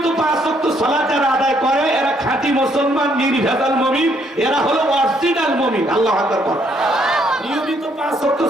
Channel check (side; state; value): both; normal; correlation 0.70